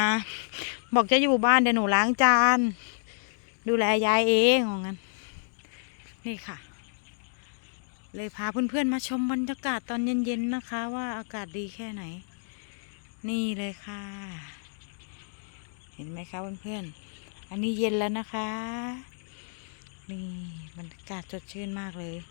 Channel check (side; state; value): right; silent; digital silence